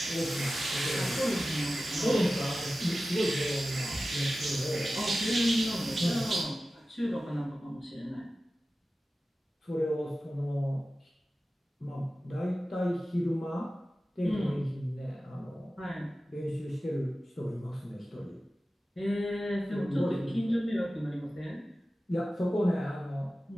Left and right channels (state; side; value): normal; both; correlation 0.95